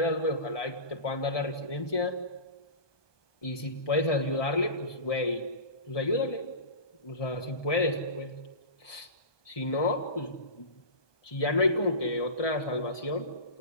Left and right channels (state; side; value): late; right; 1.2 ms